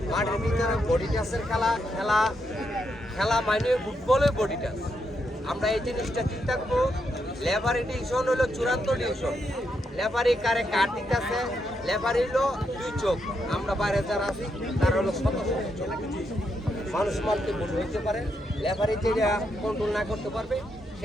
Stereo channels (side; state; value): both; normal; correlation 0.81